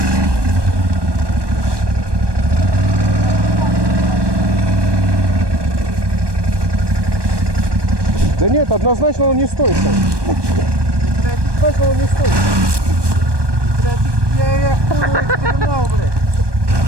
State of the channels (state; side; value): late; left; 1.2 ms